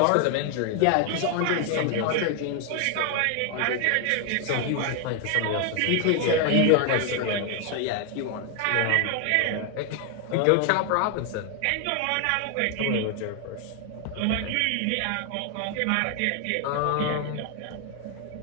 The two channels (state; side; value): different; both; correlation 0.00